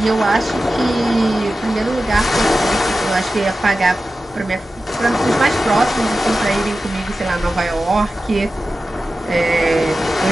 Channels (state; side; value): normal; both; correlation 0.94